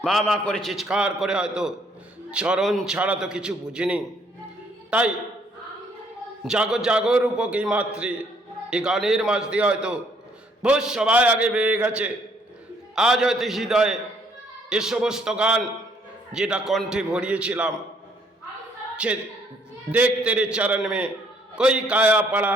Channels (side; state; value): both; normal; correlation 0.66